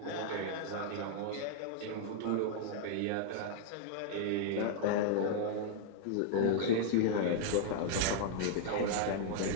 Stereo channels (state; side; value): different; both; correlation -0.01